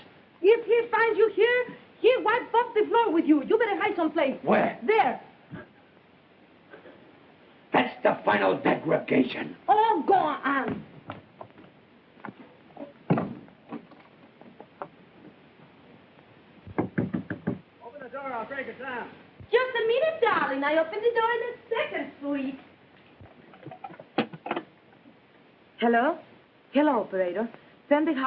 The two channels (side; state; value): both; identical; correlation 1.00